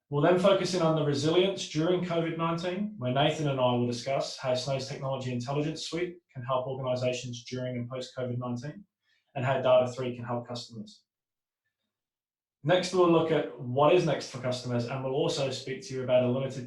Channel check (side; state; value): both; identical; correlation 1.00